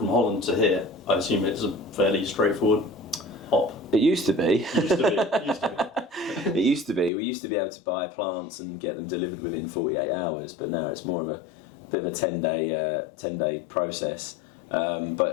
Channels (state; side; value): drops out; right; at 7.1 s